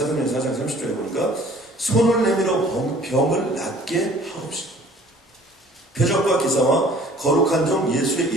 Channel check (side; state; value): both; normal; correlation 0.52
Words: 4장 30절에 보니까 손을 내밀어 병을 낫게 하옵시고 표적과 기사와 거룩한 종 예수의